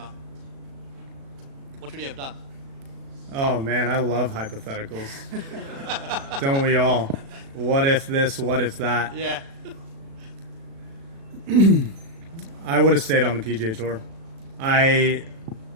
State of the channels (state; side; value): late; left; 36 ms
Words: what would you have done? Oh man, I love hypotheticals. Don't we all? What if this? What if that? Yeah. I would have stayed on the PGA Tour. I